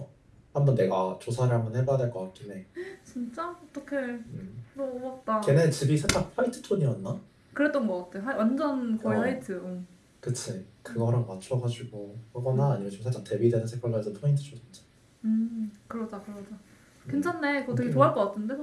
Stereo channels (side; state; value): both; identical; correlation 1.00